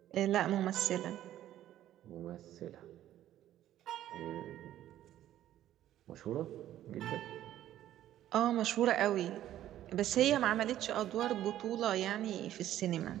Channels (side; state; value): left; quieter; 12.6 dB